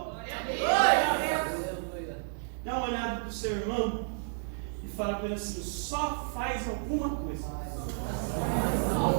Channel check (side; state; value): left; silent; digital silence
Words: Dá uma olhada para o seu irmão e fala para ele assim: só faz alguma coisa.